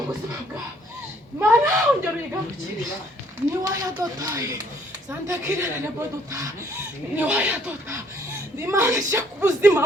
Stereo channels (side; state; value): both; normal; correlation 0.64